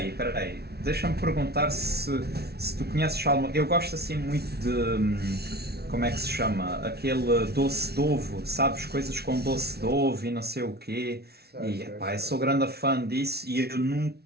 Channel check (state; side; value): late; left; 0.47 ms